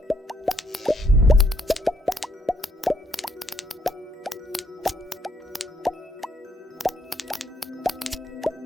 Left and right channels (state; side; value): normal; both; correlation 0.72